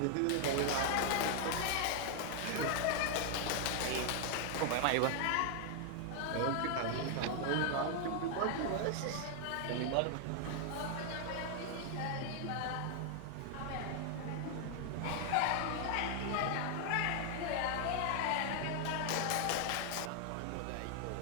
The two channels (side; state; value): both; different; correlation 0.00